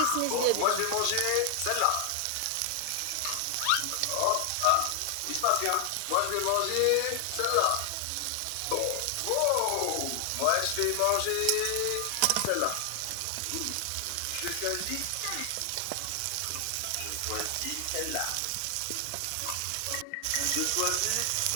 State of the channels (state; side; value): different; both; correlation 0.00